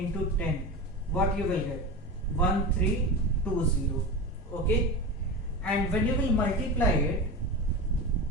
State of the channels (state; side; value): normal; both; correlation 0.24